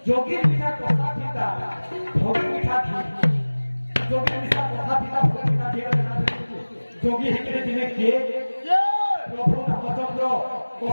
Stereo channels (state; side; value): inverted; both; correlation -1.00